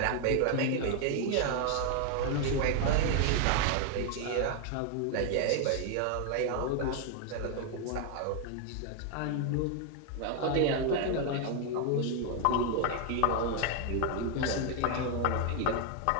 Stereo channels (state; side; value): different; both; correlation 0.00